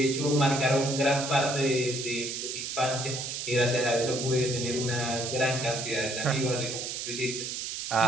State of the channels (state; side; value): noise; right; hiss, 5 dB below the sound